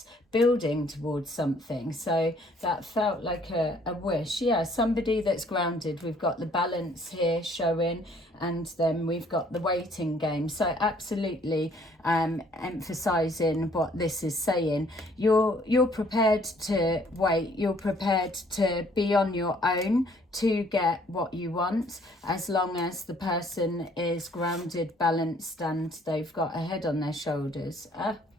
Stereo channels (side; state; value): both; normal; correlation 0.61